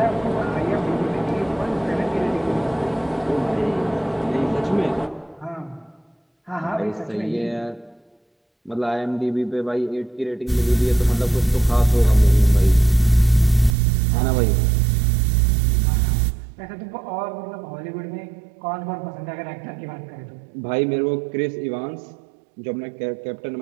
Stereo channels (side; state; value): left; drops out; at 13.8 s